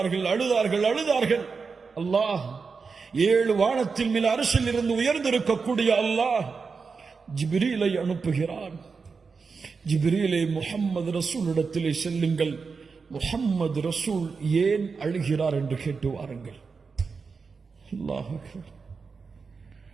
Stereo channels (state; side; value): quieter; left; 5.0 dB